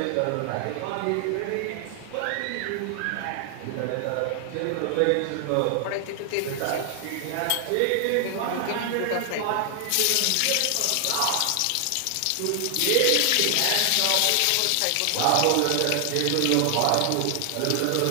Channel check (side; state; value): both; different; correlation 0.00